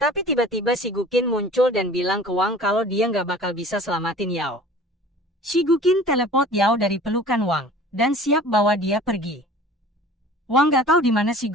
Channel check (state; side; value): normal; both; correlation 0.45